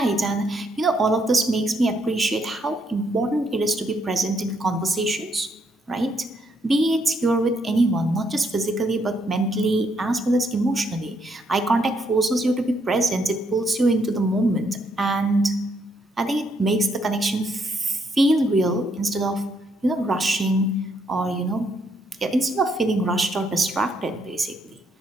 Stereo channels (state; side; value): normal; both; correlation 0.74